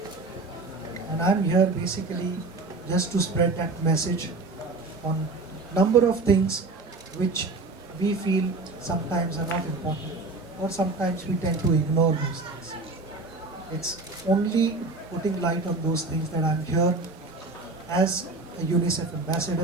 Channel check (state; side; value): quieter; left; 3.5 dB